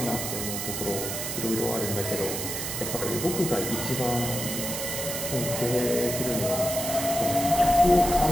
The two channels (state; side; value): noise; right; hiss, 4 dB below the sound